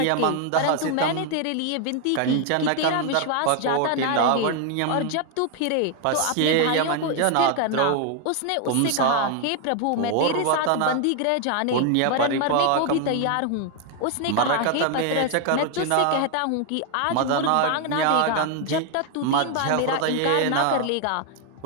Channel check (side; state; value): both; different; correlation 0.00